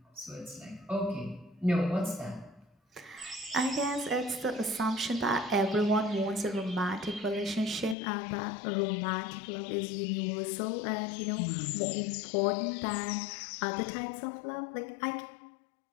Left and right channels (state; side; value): drops out; right; at 8.0 s